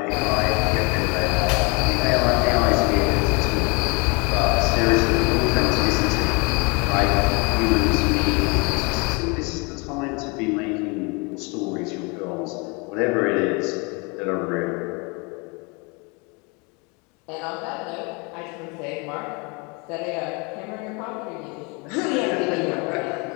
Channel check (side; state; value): right; quieter; 30.2 dB